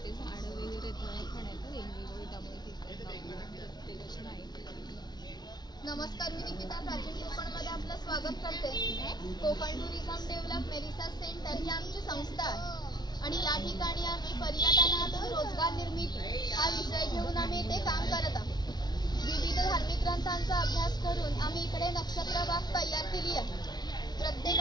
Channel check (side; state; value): right; late; 0.20 ms